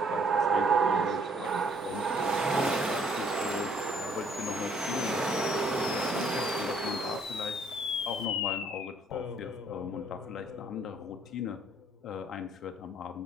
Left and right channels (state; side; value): normal; both; correlation 0.63